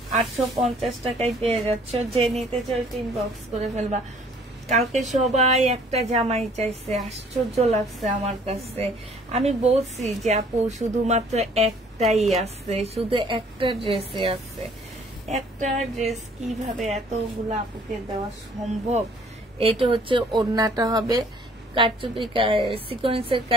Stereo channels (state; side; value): normal; both; correlation 0.57